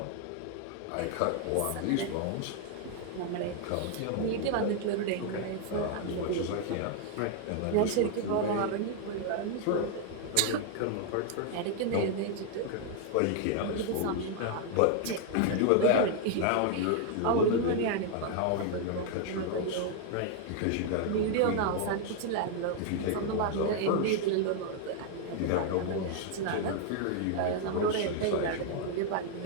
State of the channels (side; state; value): both; different; correlation 0.00